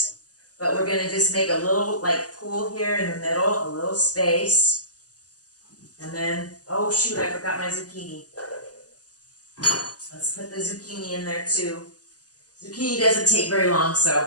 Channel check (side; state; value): right; late; 0.67 ms